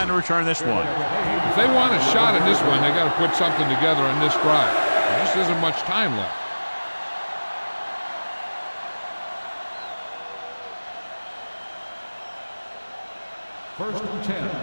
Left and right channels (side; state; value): both; inverted; correlation -1.00